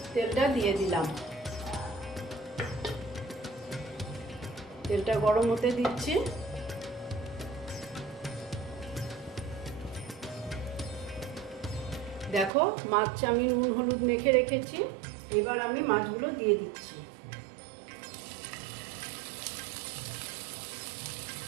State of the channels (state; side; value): drops out; left; at 12.5 s